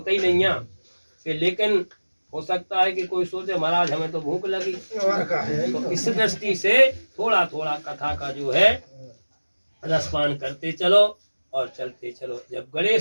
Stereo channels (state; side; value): inverted; both; correlation -1.00